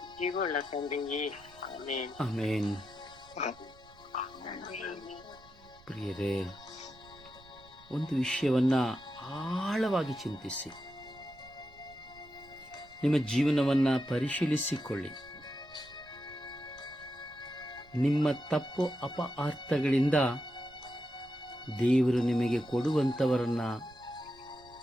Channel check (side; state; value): right; noise; rumble, 25 dB below the sound